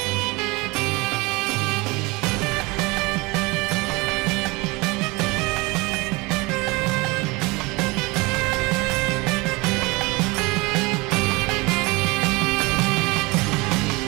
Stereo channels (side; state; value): left; quieter; 24.8 dB